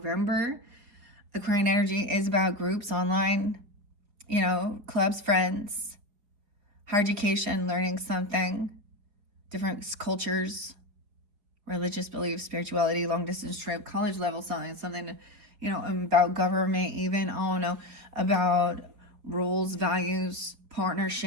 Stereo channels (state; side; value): late; left; 4.7 ms